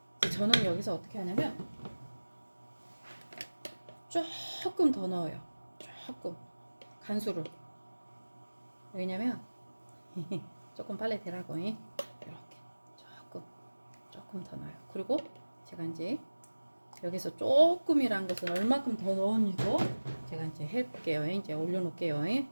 저는 여기서 어떻게 하냐면 조금 더 넣어요. 조금 간수를. 왜냐면 조금 빨리 되라고. 이렇게 조금 더 넣어요. 그리고 제가 이제 여기서 조금이란 것은 얼마큼 더 넣었는지도 제가 이제 해볼게요. 이제 올려놓을게요.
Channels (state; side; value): inverted; both; correlation -1.00